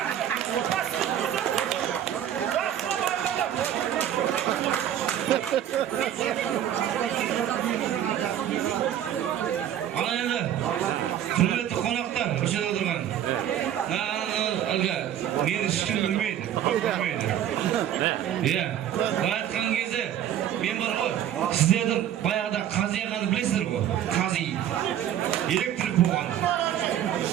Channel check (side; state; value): left; quieter; 10.7 dB